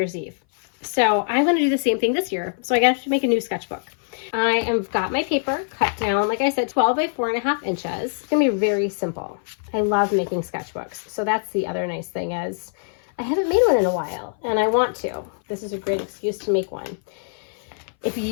Eve. So I'm going to do the same thing this year. So I got to make a new sketchbook. I have got my paper cut down, like I said, 12 by 4.5 inches. It's going to be very simple. I love making sketchbooks. So that's the other nice thing is I haven't made one in a while, and I want to. This is a great excuse to make one. If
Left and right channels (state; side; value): silent; right; 59 dB below the other